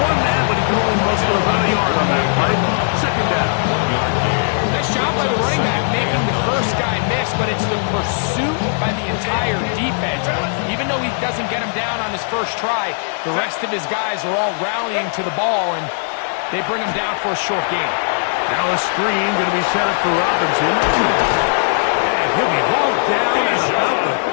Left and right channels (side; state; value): right; silent; 67 dB below the other